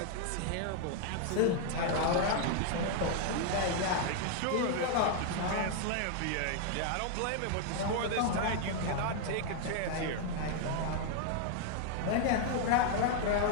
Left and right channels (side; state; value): both; different; correlation 0.00